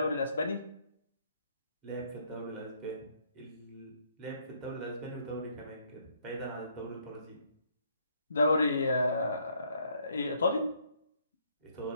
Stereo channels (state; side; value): inverted; both; correlation -0.68